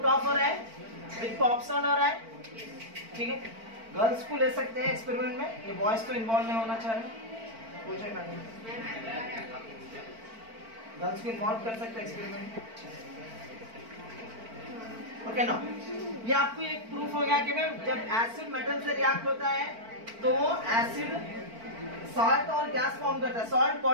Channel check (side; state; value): left; late; 4.5 ms